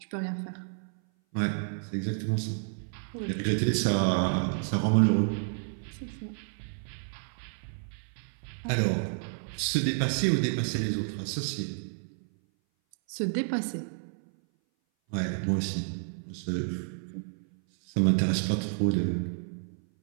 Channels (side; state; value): left; silent; 57 dB below the other